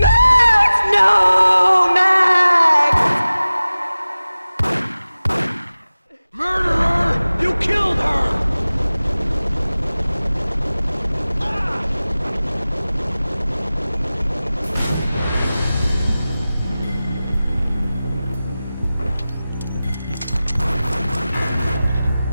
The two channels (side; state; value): both; inverted; correlation -0.97